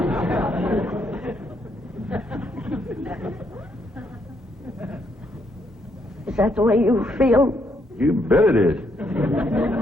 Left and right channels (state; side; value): normal; both; correlation 0.74